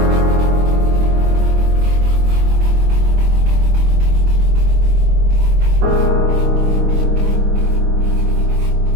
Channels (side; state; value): left; late; 24 ms